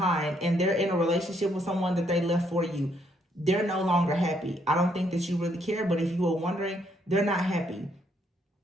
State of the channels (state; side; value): normal; both; correlation 0.71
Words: and they're in a relationship with someone that they left for you. They're no longer happy. I don't think that you really care, but if you were wondering, they're not happy.